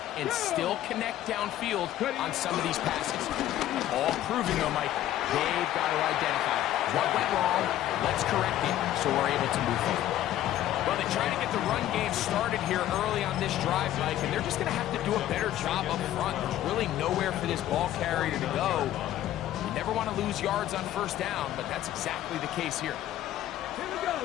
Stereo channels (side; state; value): right; quieter; 13.0 dB